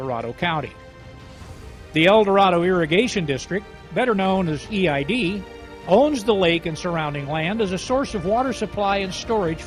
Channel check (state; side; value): identical; both; correlation 1.00